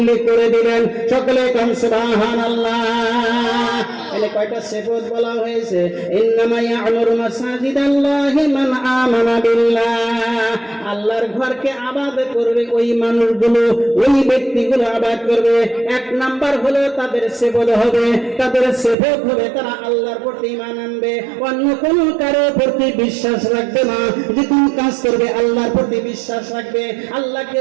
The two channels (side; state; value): left; drops out; at 18.9 s